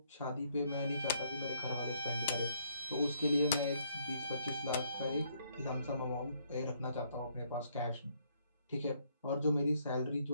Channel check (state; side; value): inverted; both; correlation -0.70